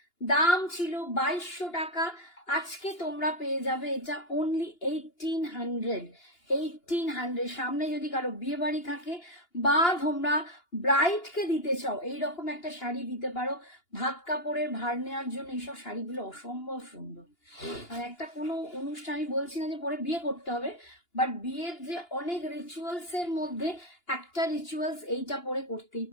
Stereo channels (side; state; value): right; late; 2.9 ms